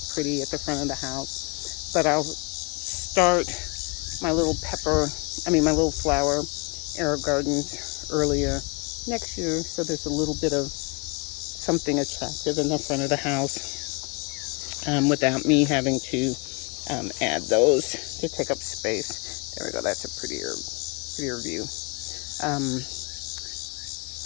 pretty at the front of the house. But I'll start my little flower Aerogardens earlier next year, so there's a little bit of something attractive in the front of the house without me having to add those to take up space. There we go. That's a prettier view.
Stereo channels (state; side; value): quieter; right; 32.0 dB